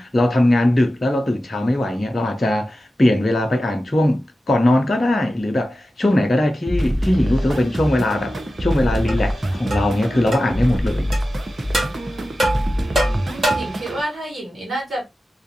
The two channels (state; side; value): normal; both; correlation 0.93